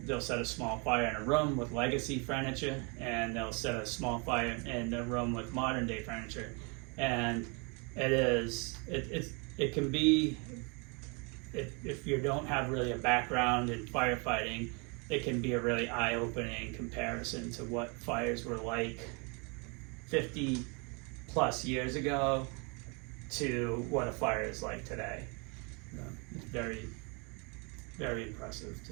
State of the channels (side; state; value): left; quieter; 32.4 dB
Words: set a small fire in a room with legacy furniture, and they'll set a small fire in a room with modern day furniture, and it can be, if you don't have really a background in firefighting, it can be a really eye-opening comparison to what fires were like 50 plus years ago to what a fire is like today. It's very, very impressive